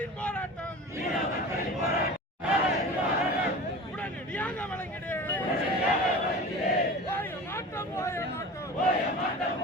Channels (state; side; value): normal; both; correlation 0.35